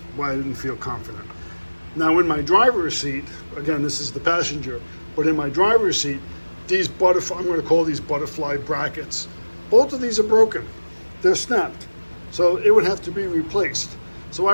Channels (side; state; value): both; inverted; correlation -1.00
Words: why I didn't feel confident. Now in my driver's seat, again, this is the passenger, but in my driver's seat, these I'm going to call these butterfly brackets. Both of these are broken. They're snapped. So it would have to be replaced. So